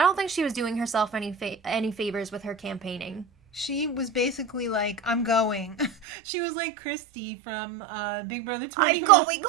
don't think she was doing herself any favors with her campaigning. She was basically like, I'm going. She was like Christy from Big Brother 21.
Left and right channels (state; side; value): drops out; left; at 6.1 s